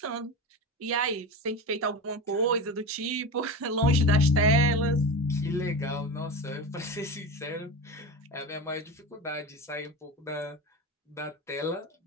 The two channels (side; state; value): both; normal; correlation 0.25